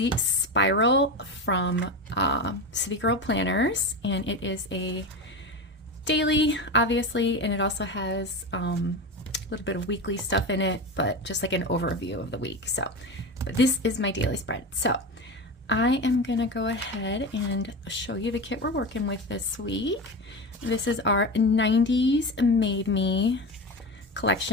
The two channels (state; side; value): normal; both; correlation 0.23